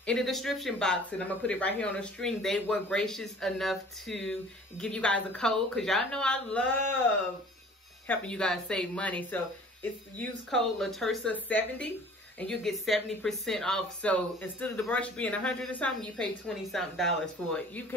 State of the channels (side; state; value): both; normal; correlation 0.49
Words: in the description box, and I'm gonna put it right here on the screen, they were gracious enough to give you guys a code, because y'all know I love helping you guys save money. So it's use code latersa70 and you get 70% off. So instead of the brush being $100 or something, you pay $20-something for it. You